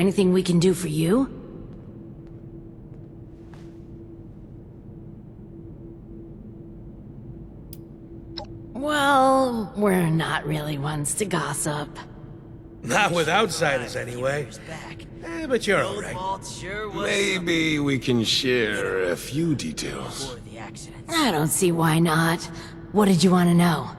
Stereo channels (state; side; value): identical; both; correlation 1.00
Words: we can do for you? Well, we're not really ones to gossip. Not with outsiders, anyway. But you're alright. Maybe we can share a few details. I don't see why not. What did you want to know?